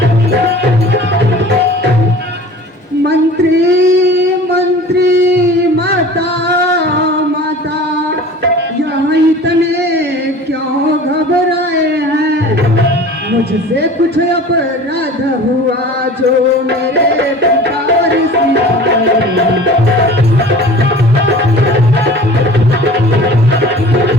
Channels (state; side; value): normal; both; correlation 0.42